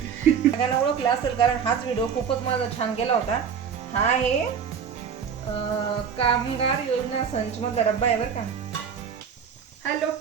सगळ्यांना ओळखलं असेल कारण हाच व्हिडिओ खूपच माझा छान गेला होता. हा आहे कामगार योजना संच मधला डब्बा आहे बरं का. हॅलो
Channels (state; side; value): quieter; left; 7.0 dB